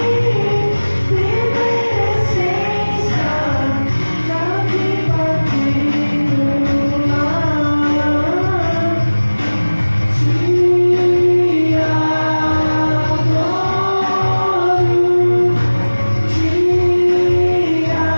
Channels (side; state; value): both; inverted; correlation -1.00